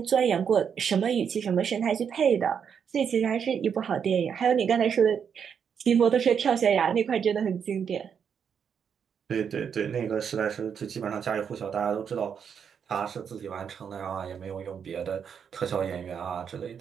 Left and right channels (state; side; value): quieter; left; 7.3 dB